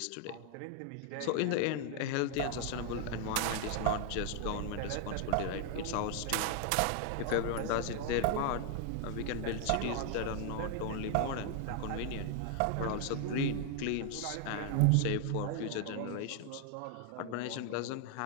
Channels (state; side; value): different; both; correlation 0.00